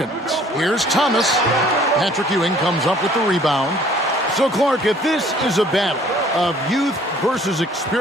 Here's Thomas. Patrick Ewing comes up with the rebound. So, Clark, if this is a battle of youth versus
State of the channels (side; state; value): both; normal; correlation 0.56